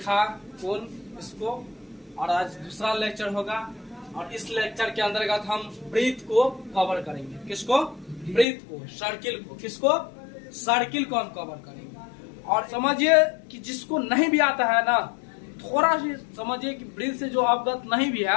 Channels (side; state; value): right; drops out; at 8.5 s